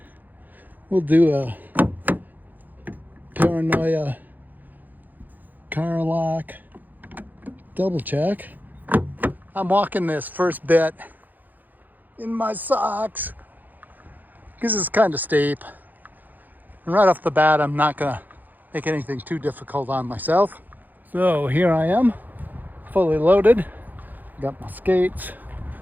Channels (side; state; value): left; late; 0.085 ms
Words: We'll do a paranoia car lock double check. I'm walking this first bit in my socks because it's kind of steep. And right off the bat, I'm not gonna make anything too difficult on myself. So here I am, fully loaded. Got my skates,